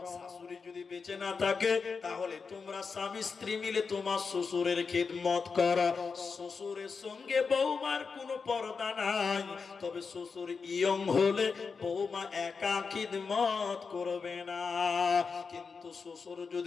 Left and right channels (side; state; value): right; quieter; 5.2 dB